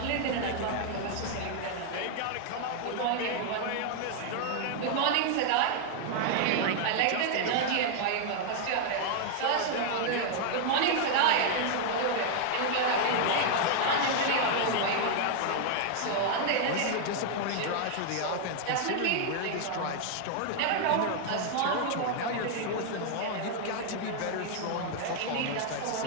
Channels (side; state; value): both; different; correlation 0.00